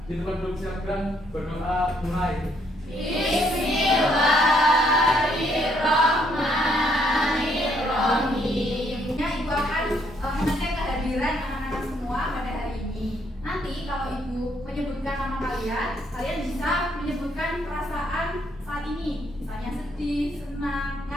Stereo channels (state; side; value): normal; both; correlation 0.70